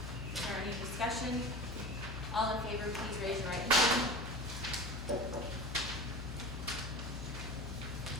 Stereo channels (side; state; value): left; noise; hum, 6 dB below the sound